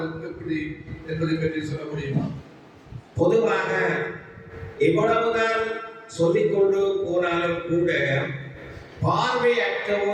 எப்படி என்பதை பற்றி சொல்ல முடியுமா? பொதுவாக எவ்வளவுதான் சொல்லிக்கொண்டு போனாலும் கூட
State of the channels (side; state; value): both; identical; correlation 1.00